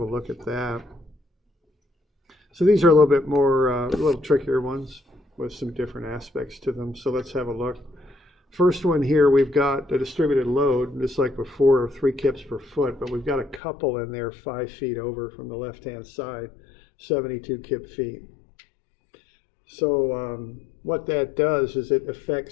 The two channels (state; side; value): drops out; right; at 13.6 s